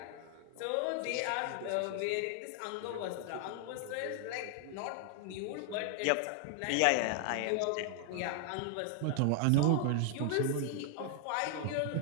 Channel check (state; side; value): different; both; correlation 0.00